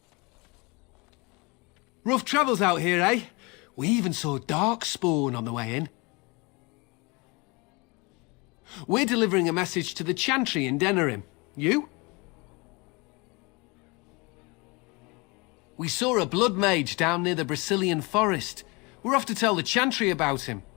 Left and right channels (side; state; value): right; quieter; 27.2 dB